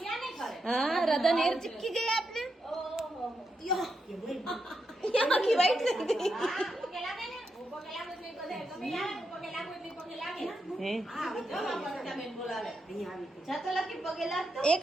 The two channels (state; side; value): normal; both; correlation 0.84